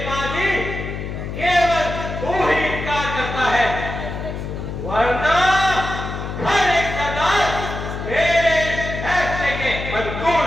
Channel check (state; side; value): noise; left; hum, 6 dB below the sound